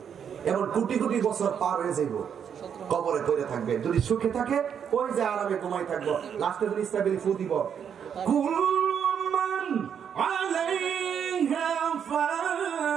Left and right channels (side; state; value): left; quieter; 7.9 dB